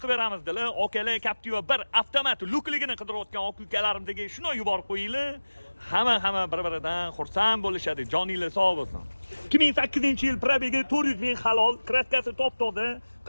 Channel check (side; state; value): both; inverted; correlation -1.00